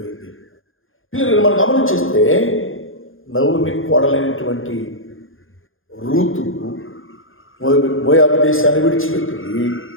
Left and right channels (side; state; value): right; late; 0.59 ms